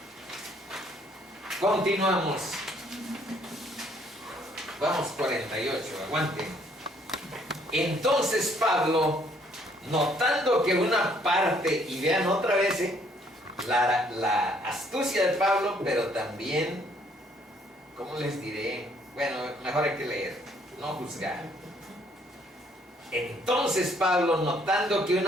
Continuamos. Vamos 48, aguanten. Entonces Pablo, notando que una parte, y vean otra vez la astucia de Pablo, pero también, ¿cómo les diré? Bueno, mejor hay que leer, no juzgar. Entonces Pablo, notando que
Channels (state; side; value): normal; both; correlation 0.65